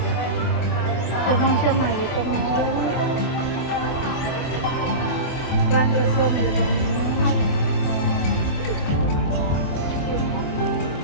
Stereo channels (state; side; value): late; right; 24 ms